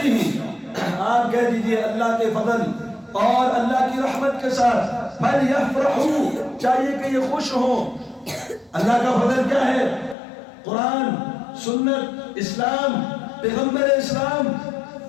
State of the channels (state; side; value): drops out; right; at 10.2 s